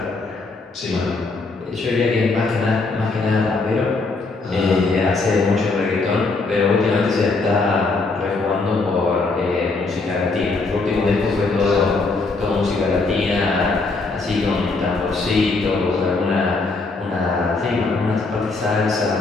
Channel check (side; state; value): right; quieter; 3.7 dB